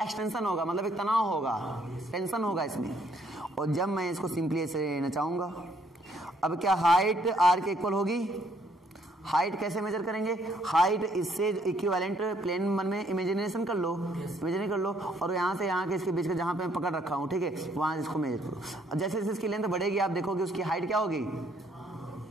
एक्सटेंशन होगा, मतलब एक तनाव होगा, टेंशन होगा इसमें। और जब मैं इसको सिंपली ऐसे नचाऊंगा, अब क्या हाइट आर के इक्वल होगी? हाइट कैसे मेजर करेंगे? हाइट इससे इक्विवेलेंट प्लेन मन में इमेजिनेशन कर लो, इमेजिन कर लो, और यहाँ से यहाँ के इसके बीच का जहाँ पे मैं पकड़ रखा हूँ, ठीक है, वहां इसको मेजर करो। अब जैसे जैसे इसकी लेंथ बढ़ेगी आप देखोगे उसकी हाइट क्या होगी?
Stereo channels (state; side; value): normal; both; correlation 0.67